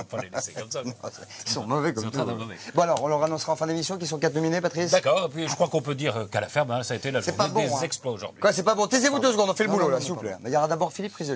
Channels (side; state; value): both; identical; correlation 1.00